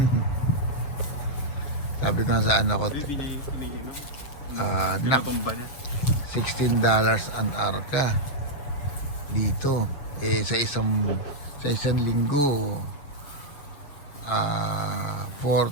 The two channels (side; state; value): right; late; 7.8 ms